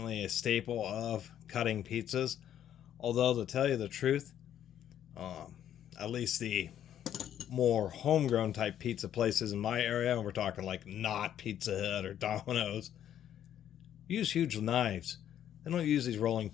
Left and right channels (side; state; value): right; quieter; 10.5 dB